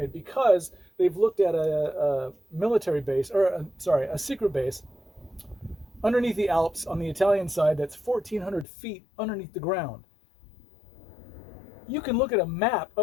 because they've looked at a military base, a secret base underneath the Alps on the Italian side that's 1,400 feet underneath the ground. You can look at a map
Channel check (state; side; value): drops out; right; at 8.7 s